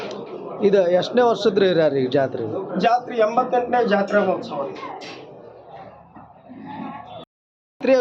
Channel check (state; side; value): identical; both; correlation 1.00